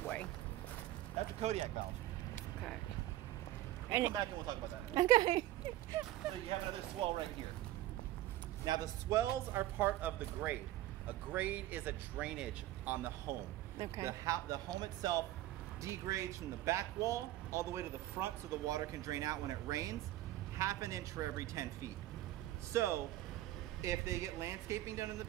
That's a Kodiak valve. Okay. We'll come back and we'll talk about that. Okay. So you have another swell right here. Now the swells are part of the grade. A grade is a drainage on the home. Okay. The home itself degrades from the back wall all the way to the front so the water can drain out when it rains, 1/2 inch for every 10 feet. So if they get landscaping done in the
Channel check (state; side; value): quieter; left; 15.1 dB